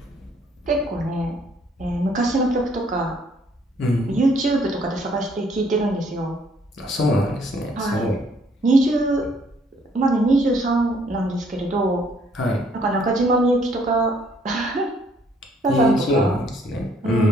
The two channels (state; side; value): normal; both; correlation 0.65